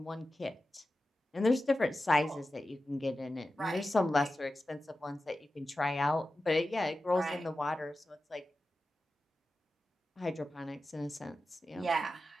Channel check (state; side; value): normal; both; correlation 0.93